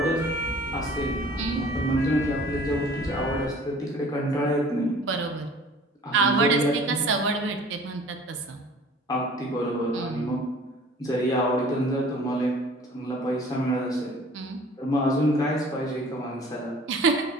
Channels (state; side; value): normal; both; correlation 0.48